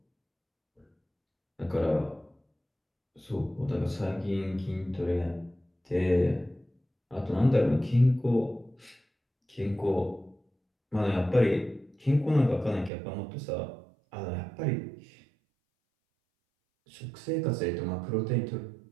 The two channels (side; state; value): left; drops out; at 12.9 s